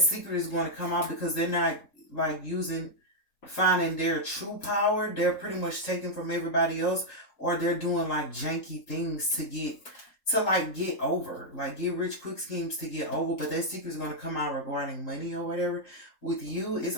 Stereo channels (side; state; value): right; late; 3.8 ms